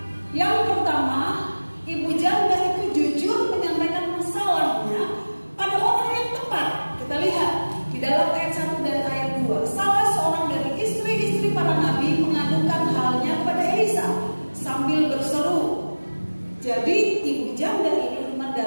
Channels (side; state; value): both; inverted; correlation -1.00